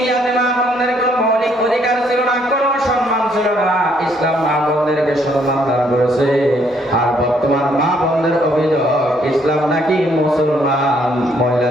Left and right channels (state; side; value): normal; both; correlation 0.68